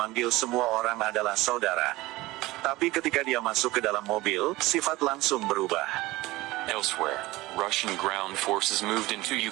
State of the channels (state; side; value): quieter; left; 19.4 dB